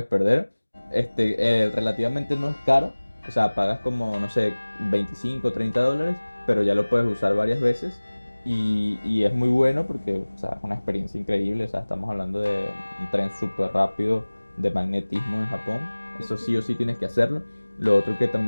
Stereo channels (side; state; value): both; inverted; correlation -1.00